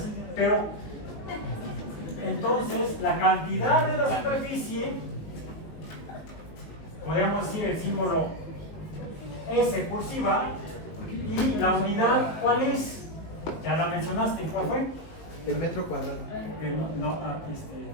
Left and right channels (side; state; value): right; late; 19 ms